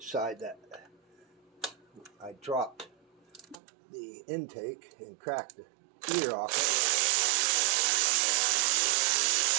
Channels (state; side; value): drops out; left; at 3.6 s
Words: that I dropped the intake and cracked the ear off it.